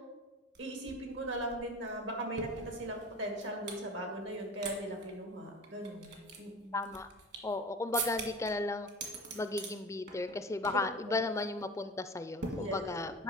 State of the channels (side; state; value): both; normal; correlation 0.35